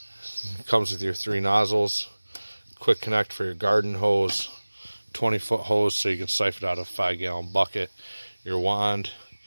It comes with your 3 nozzles, quick connect for your garden hose, 20-foot hose so you can siphon out a 5-gallon bucket, your wand,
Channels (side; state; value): both; inverted; correlation -1.00